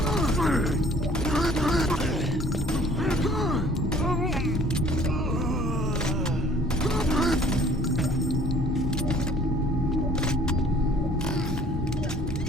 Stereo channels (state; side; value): normal; both; correlation 0.55